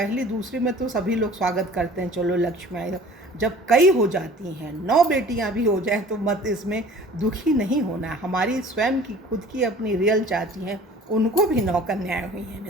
दूसरी में तो सभी लोग स्वागत करते हैं, चलो लक्ष्मी आई, जब कई हो जाती हैं, 9 बेटियां भी हो जाएं तो मत इसमें दुखी नहीं होना। हमारी स्वयं की खुद की अपनी रियल चाची हैं, उनको भी 9 कन्याएं हुई हैं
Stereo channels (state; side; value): normal; both; correlation 0.47